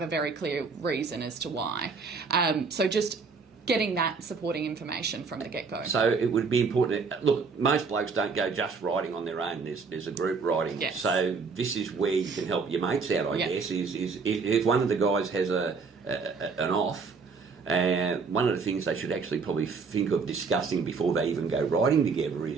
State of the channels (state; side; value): quieter; left; 4.9 dB